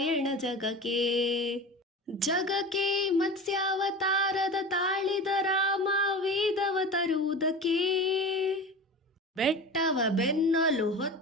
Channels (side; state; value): both; normal; correlation 0.32